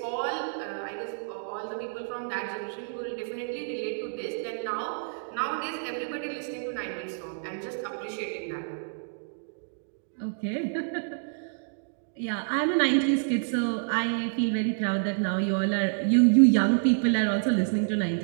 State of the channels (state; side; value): silent; left; digital silence